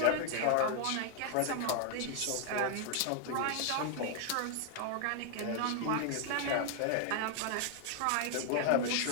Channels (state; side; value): different; both; correlation 0.00